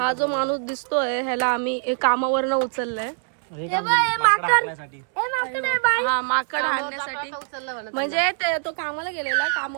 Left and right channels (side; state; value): left; silent; digital silence